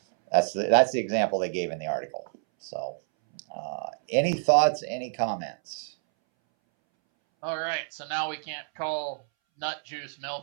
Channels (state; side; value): silent; left; 60 dB below the other